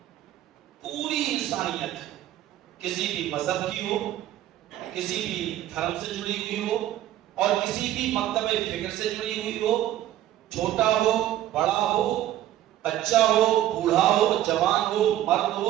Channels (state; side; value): quieter; left; 13.0 dB